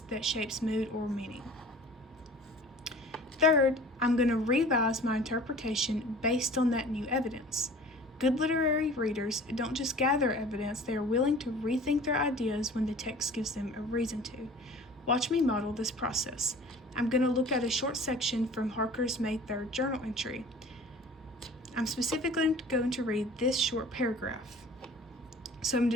that shapes mood or meaning. Third, I'm going to revise my interpretation based on that new evidence. Good literary readers don't just gather evidence, they are willing to rethink their ideas when the text gives them a reason to. Watch me model this process. I'm going to look at a short section from Harker's May 3rd journal entry. I'm specifically going to read this short paragraph. So I'm going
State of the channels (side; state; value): both; normal; correlation 0.45